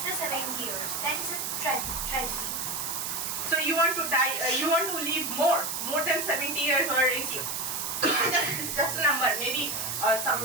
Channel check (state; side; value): noise; right; hiss, 3 dB below the sound